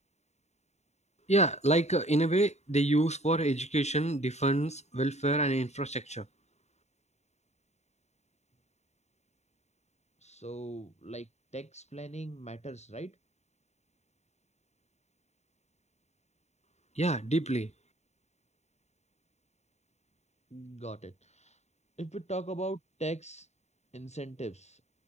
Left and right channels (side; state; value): right; late; 0.32 ms